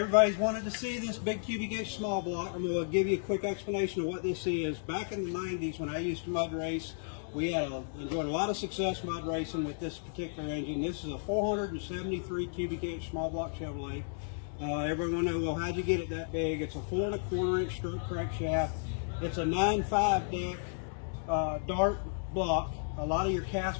wanted to see this big cubic inch small block. I'm going to give you a quick explanation of what this is. Back in the 90s when I used to mud race, we enjoyed a lot of success mud racing with this particular engine. This is a 473 cubic inch small block Chevrolet. Everyone will know, well, how'd you get it that big? It's a 4 1/4 inch stroke crankshaft. It's a 9.5 deck Dart block. A lot of your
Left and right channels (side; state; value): right; silent; digital silence